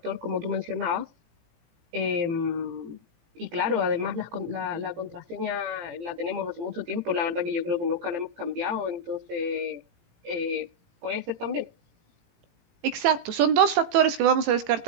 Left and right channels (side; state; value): left; late; 18 ms